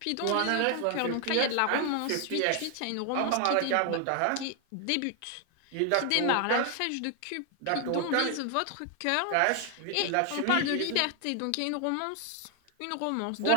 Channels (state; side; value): different; both; correlation 0.00